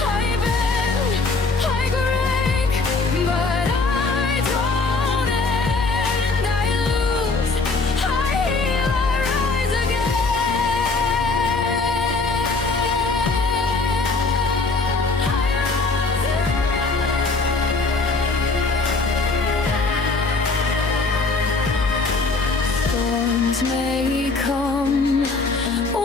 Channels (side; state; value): right; quieter; 3.8 dB